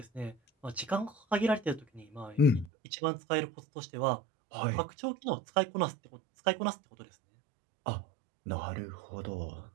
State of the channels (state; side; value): drops out; left; at 2.7 s